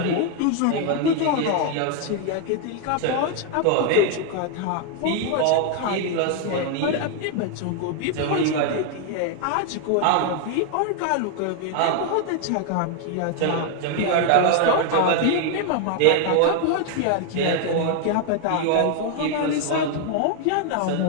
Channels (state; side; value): different; both; correlation 0.00